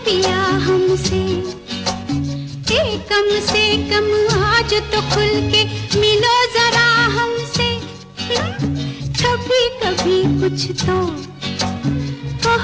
पिया हमसे। कम से कम आज तो खुल के मिलो जरा हमसे। कभी कभी कुछ तो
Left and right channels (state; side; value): identical; both; correlation 1.00